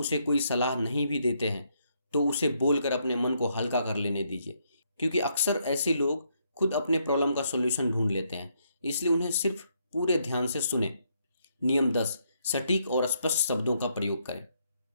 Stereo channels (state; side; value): inverted; both; correlation -0.74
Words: कोई सलाह नहीं भी देते हैं तो उसे बोलकर अपने मन को हल्का कर लेने दीजिए, क्योंकि अक्सर ऐसे लोग खुद अपने प्रॉब्लम का सॉल्यूशन ढूंढ लेते हैं। इसलिए उन्हें सिर्फ पूरे ध्यान से सुने। नियम 10, सटीक और स्पष्ट शब्दों का प्रयोग करें।